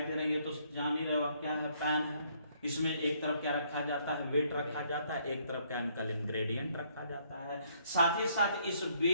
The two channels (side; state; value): both; inverted; correlation -0.68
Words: दे रही है तो जान ही रहे हो क्या है? पैन है। इसमें एक तरफ क्या रखा जाता है? वेट रखा जाता है, एक तरफ केमिकल इंग्रेडिएंट रखा जाता है। साथ ही साथ इस